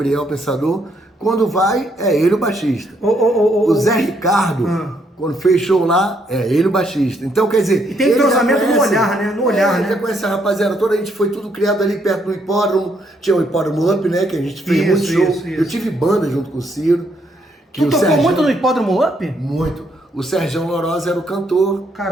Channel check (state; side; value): normal; both; correlation 0.72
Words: Pensador, quando vai, é ele o baixista. O Zé Ricardo Quando fez show lá, ele o baixista. Então, quer dizer... E tem entrosamento no olhar, né? No olhar, né? Já conhece a rapaziada toda, a gente foi tudo criado ali perto do hipódromo. Tinha o hipódromo Up, né? Que a gente fez muito show. Isso. Eu tive banda junto com o Ciro. Tu tocou muito no hipódromo Up? Muito. O Sergião Lorosa era o cantor.